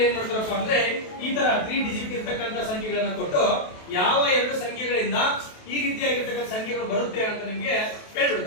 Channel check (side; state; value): right; late; 28 ms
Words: ಏನ್ ಮಾಡ್ತಾರಪ್ಪ ಅಂದ್ರೆ ಈ ತರ 3 ಡಿಜಿಟ್ ಇರ್ತಕ್ಕಂಥ ಸಂಖ್ಯೆಗಳನ್ನ ಕೊಟ್ಟು ಯಾವ 2 ಸಂಖ್ಯೆಗಳಿಂದ ಈ ರೀತಿಯಾಗಿರ್ತಕ್ಕಂಥ ಸಂಖ್ಯೆಗಳು ಬರುತ್ತೆ ಅಂತ ನಿಮ್ಗೆ